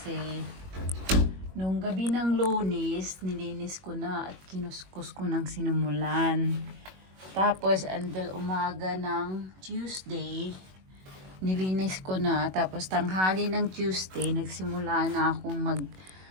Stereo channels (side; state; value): left; late; 21 ms